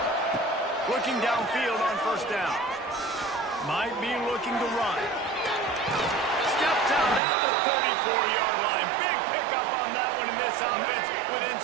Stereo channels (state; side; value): drops out; left; at 7.2 s